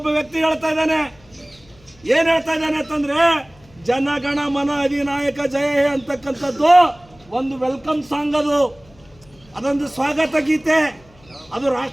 ವ್ಯಕ್ತಿ ಹೇಳ್ತಾ ಇದ್ದಾನೆ. ಏನ್ ಹೇಳ್ತಾ ಇದ್ದಾನೆ ಅಂತಂದ್ರೆ, ಜನಗಣ ಮನ ಅಧಿನಾಯಕ ಜಯ ಹೇ ಅಂತಕ್ಕಂಥದ್ದು ಒಂದು ವೆಲ್ಕಮ್ ಸಾಂಗ್, ಅದೊಂದು ಸ್ವಾಗತ ಗೀತೆ, ಅದು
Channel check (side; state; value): left; noise; hum, 27 dB below the sound